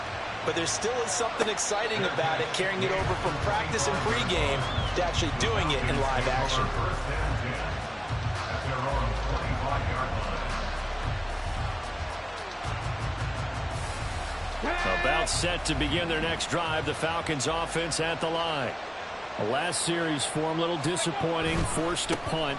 But there still is something exciting about it, carrying it over from practice and pregame to actually doing it in live action. About set to begin their next drive, the Falcons offense at the line. The last series for them, a little disappointing, forced to punt.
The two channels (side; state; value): both; identical; correlation 1.00